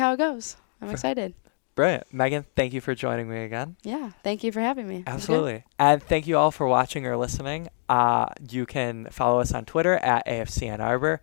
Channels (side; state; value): right; silent; digital silence